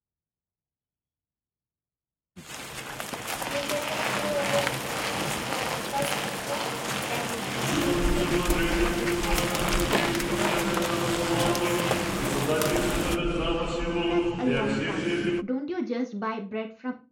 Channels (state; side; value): identical; both; correlation 1.00